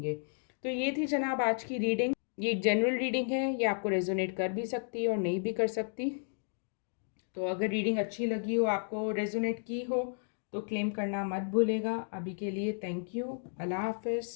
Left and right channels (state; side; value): silent; right; digital silence